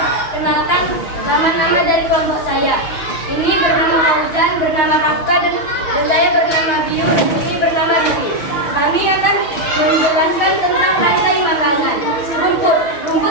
nama-nama dari kelompok saya. Ini bernama Fauzan, bernama Rafka, dan saya bernama Biu, dan ini bernama Riri. Kami akan menjelaskan tentang rantai makanan.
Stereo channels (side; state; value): right; late; 6.4 ms